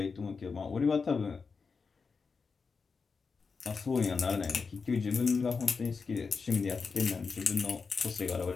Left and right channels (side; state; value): right; quieter; 5.0 dB